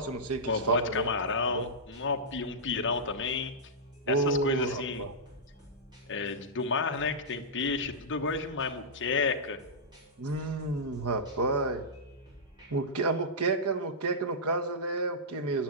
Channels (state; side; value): normal; both; correlation -0.13